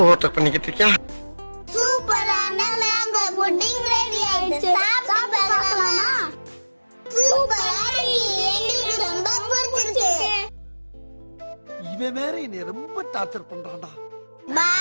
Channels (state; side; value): inverted; both; correlation -1.00